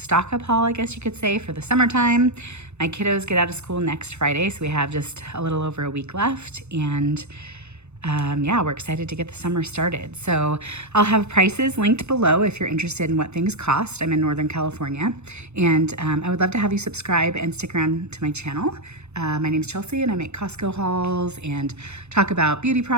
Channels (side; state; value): left; late; 0.81 ms